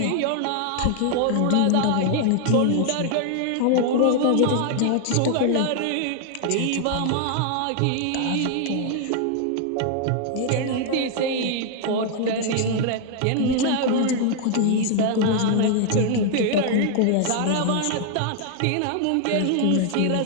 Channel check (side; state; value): both; different; correlation 0.00